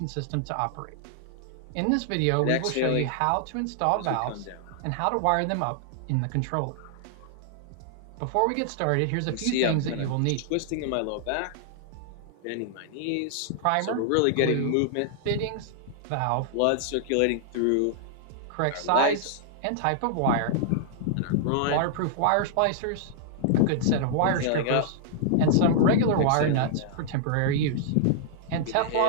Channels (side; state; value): both; different; correlation -0.01